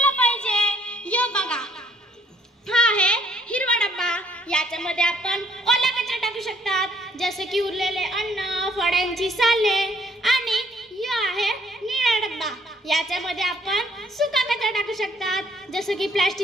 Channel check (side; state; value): both; normal; correlation 0.64